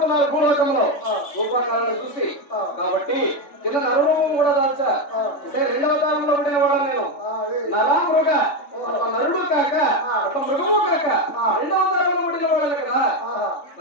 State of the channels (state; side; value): late; right; 3.4 ms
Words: భూలోకంలో రూపాకాలను చూసి. కాబట్టి కింద నరురూపం కూడా దాల్చా. అంటే రెండవ తాళంలో పుట్టిన వాడు నేను. నరామృగ నరుడు కాక ఒక మృగము కాక రెండవ తాళంలో పుట్టిన వాడు కదా.